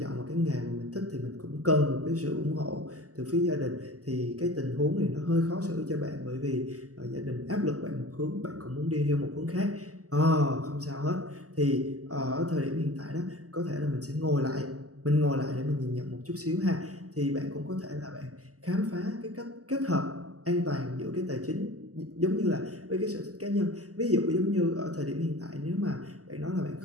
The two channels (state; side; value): late; left; 0.66 ms